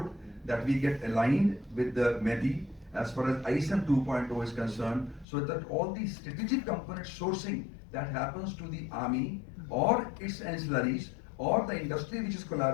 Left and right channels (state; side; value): drops out; right; at 5.2 s